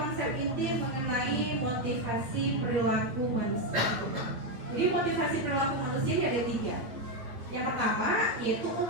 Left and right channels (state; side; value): late; left; 8.9 ms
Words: inti mengenai motivasi perilaku manusia. Jadi motivasi perilaku manusia ini ada 3. Yang pertama yaitu